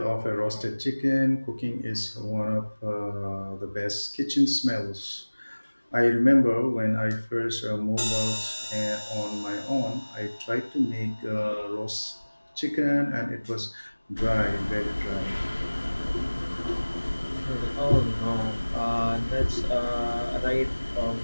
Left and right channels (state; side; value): inverted; both; correlation -1.00